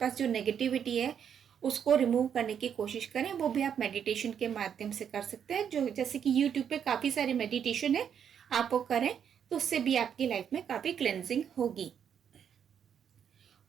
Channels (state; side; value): quieter; left; 8.2 dB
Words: जो नेगेटिविटी है उसको रिमूव करने की कोशिश करें। वो भी आप मेडिटेशन के माध्यम से कर सकते हैं, जो जैसे कि यूट्यूब पे काफ़ी सारे मेडिटेशन है, आप वो करें तो उससे भी आपकी लाइफ में काफ़ी क्लेंजिंग होगी।